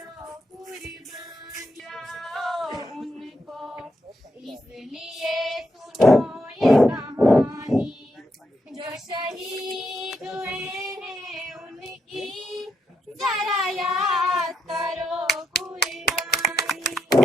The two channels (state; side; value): normal; both; correlation 0.81